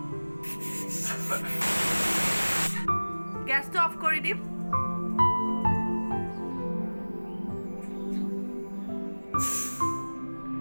গেছটো অফ কৰি দিম।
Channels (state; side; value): inverted; both; correlation -1.00